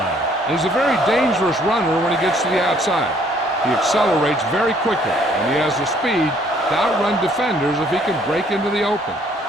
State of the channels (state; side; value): normal; both; correlation 0.63